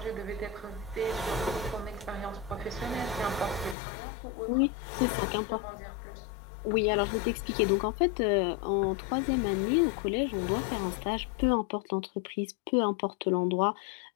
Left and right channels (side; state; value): right; drops out; at 3.8 s